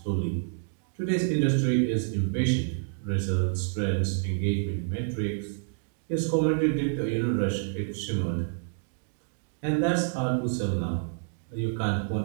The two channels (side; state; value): left; silent; digital silence